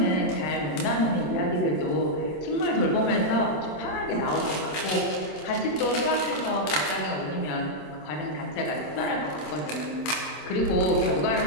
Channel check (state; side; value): late; right; 26 ms